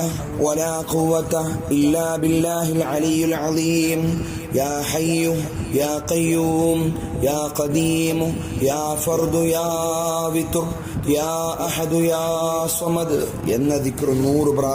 ولا قوة إلا بالله العلي العظيم. يا حي يا قيوم يا قديم يا فرد يا وتر يا أحد يا صمد എന്ന ദിക്ർ 100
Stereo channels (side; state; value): both; identical; correlation 1.00